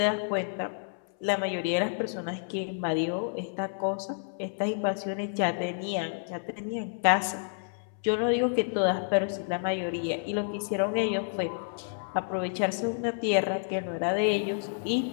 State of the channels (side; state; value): right; silent; 58 dB below the other